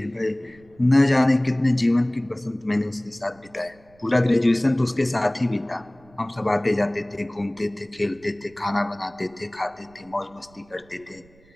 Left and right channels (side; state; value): right; noise; rumble, 28 dB below the sound